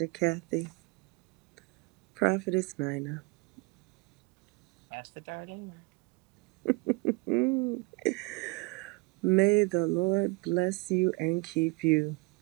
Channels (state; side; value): quieter; left; 26.5 dB